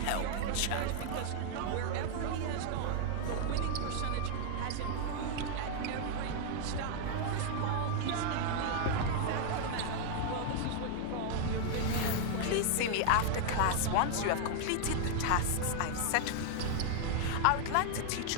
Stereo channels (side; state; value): both; different; correlation 0.00